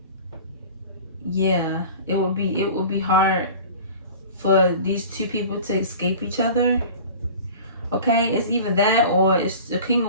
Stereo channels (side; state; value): both; inverted; correlation -0.40